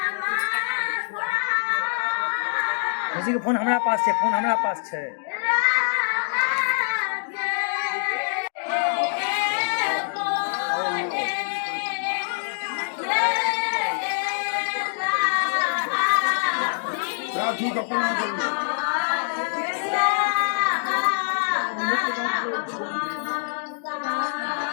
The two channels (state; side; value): silent; right; digital silence